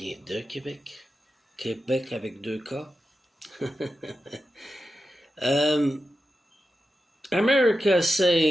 de Québec, Québec avec deux K. America is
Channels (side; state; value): both; normal; correlation 0.90